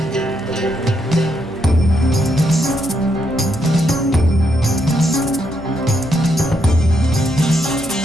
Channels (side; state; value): both; normal; correlation 0.78